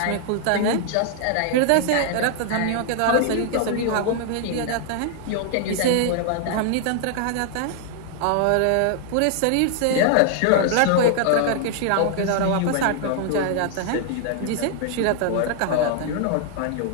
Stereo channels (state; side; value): different; both; correlation 0.00